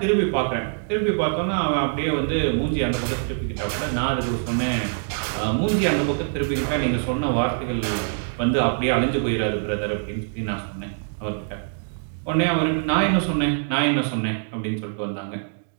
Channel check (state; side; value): silent; left; digital silence